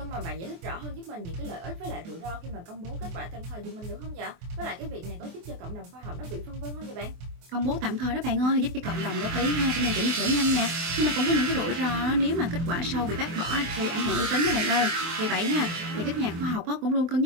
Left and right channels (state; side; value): late; left; 24 ms